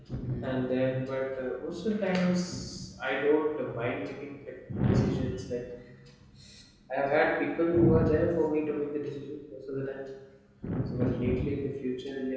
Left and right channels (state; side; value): identical; both; correlation 1.00